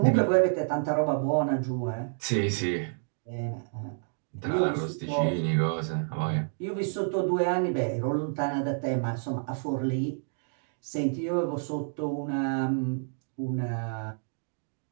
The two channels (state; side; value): silent; left; digital silence